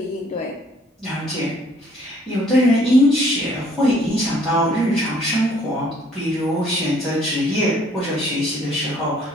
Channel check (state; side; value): normal; both; correlation 0.61